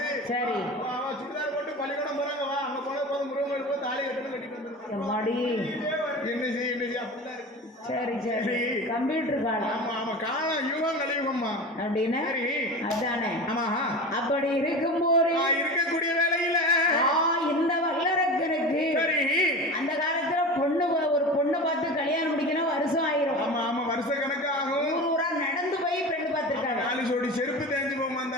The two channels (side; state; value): both; normal; correlation 0.31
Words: சரி சுடிதார் போட்டு பள்ளிக்கூடம் போறாங்க வா அங்க போன போது முருகன் போய் தாலி கட்டணும் கட்டிட்டு வந்துருக்காங்க என்ன செய்ய அப்படிலாம் இருக்கு சரி கம்ப்யூட்டர் காலம் ஆமா காலம் யுகம் கலியுகம்மா அப்படின்னு சரி அதானே. ஆமா அப்படி இருக்கும்போது இருக்கக்கூடிய வேலையில இந்த வல்லரக்கனுக்கு சரி அந்த காலத்துல ஒரு பொண்ணு பார்த்து கல்யாணம் முடிக்கணும் வருஷம் ஆயிரும். ஆமா ஆமா வருஷ கணக்கு ஆகும். ஊரா நடந்து போய் பெண்ணு பார்த்திருக்காங்க. 4 ஜோடி செருப்பு தேஞ்சு போமா